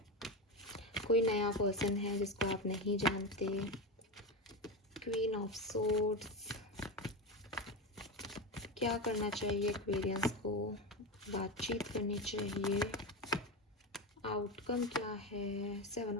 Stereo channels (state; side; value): normal; both; correlation 0.18